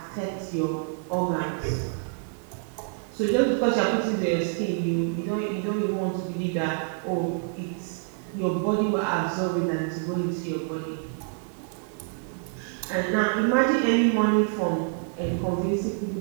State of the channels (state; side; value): silent; left; 57 dB below the other